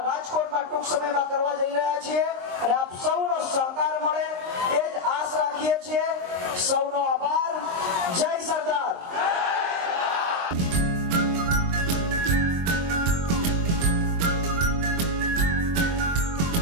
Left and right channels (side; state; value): left; late; 23 ms